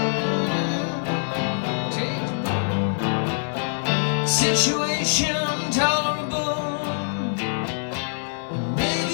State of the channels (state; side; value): silent; right; 62 dB below the other